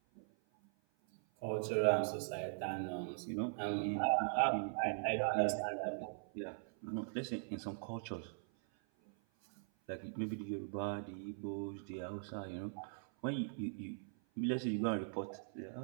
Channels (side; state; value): left; silent; 51 dB below the other